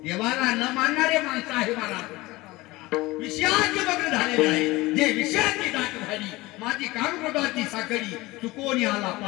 देवाला न मानणारे माणसं आहे मला विषयाचे मग्न झालेले आहे जे विषयाची दाट झाली माझी कामकृताची साखळी चुकवून आला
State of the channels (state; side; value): quieter; right; 20.4 dB